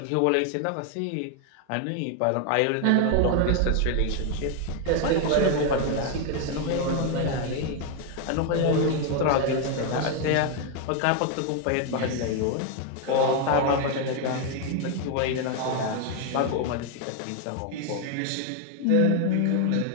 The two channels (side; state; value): both; different; correlation 0.01